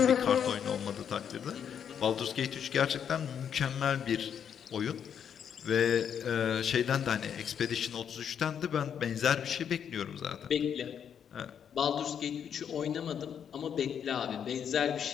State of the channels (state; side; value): quieter; right; 8.2 dB